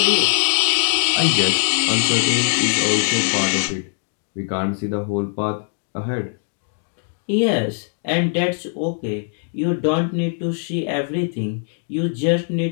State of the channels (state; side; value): silent; right; digital silence